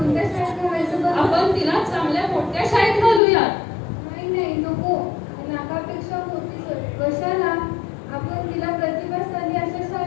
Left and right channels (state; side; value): drops out; right; at 3.2 s